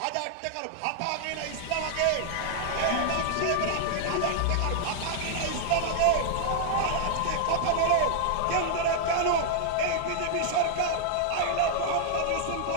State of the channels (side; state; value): both; different; correlation 0.00